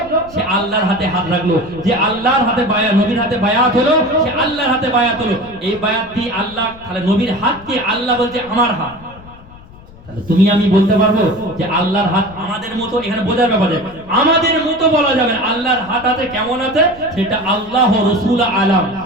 সে আল্লাহর হাতে হাত রাখলো, যে আল্লাহর হাতে বায়াত, নবীর হাতে বায়াত হলো সে আল্লাহর হাতে বায়াত হলো। এই বায়াতটি আল্লাহ, তাহলে নবীর হাতকে আল্লাহ বলছে আমার হাত। তাহলে তুমি আমি বলতে পারবো যে আল্লাহর হাত আমাদের মতো? এখানে বোঝার ব্যাপার, আমাদের মতো বলা যাবে না। আল্লাহর হাত আছে কেমন আছে সেটা আল্লাহ রাসূল আলাম,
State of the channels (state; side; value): noise; left; rumble, 21 dB below the sound